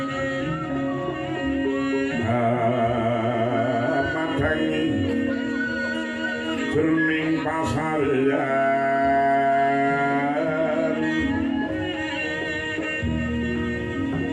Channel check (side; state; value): both; identical; correlation 1.00